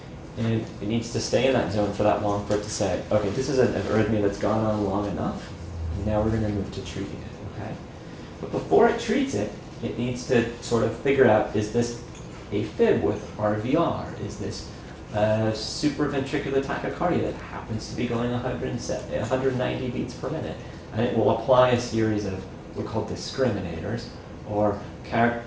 And it needs to stay in that zone for that long for it to say, okay, this is an arrhythmia that's gone on long enough, and now we're going to move to treating it, okay? But before it treats it, it needs to sort of figure out, is this a fib with RVR? Is this supraventricular tachycardia that happens to be going 190 beats per minute? And it will apply a series of what are called discriminators, or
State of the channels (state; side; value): identical; both; correlation 1.00